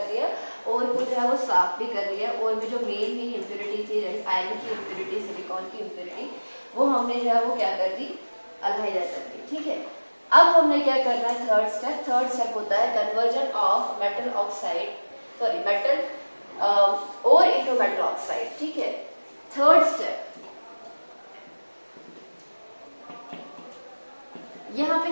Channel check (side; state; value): both; inverted; correlation -1.00